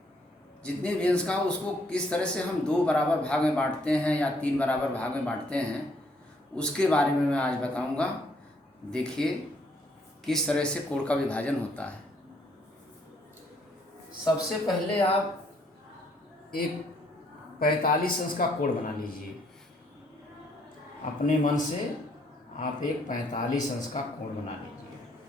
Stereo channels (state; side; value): normal; both; correlation 0.68